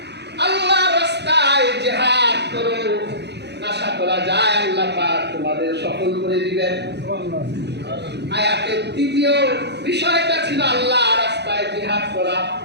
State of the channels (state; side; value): late; left; 0.49 ms